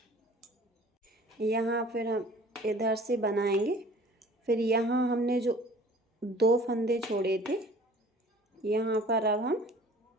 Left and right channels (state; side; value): normal; both; correlation 0.49